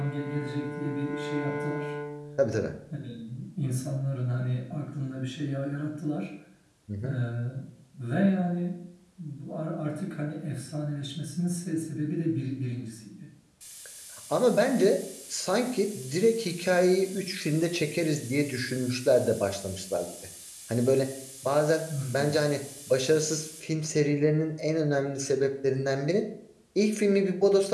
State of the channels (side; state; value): both; identical; correlation 1.00